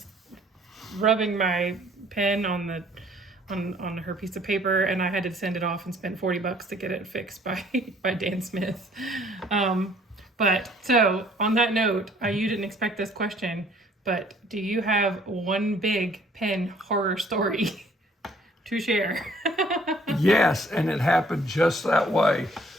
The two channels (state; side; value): normal; both; correlation 0.59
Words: rubbing my pen on her piece of paper, and I had to send it off and spend $40 to get it fixed by Dan Smith. But so on that note, you didn't expect this question, but do you have one big pen horror story to share? Yes, and it happened just that way.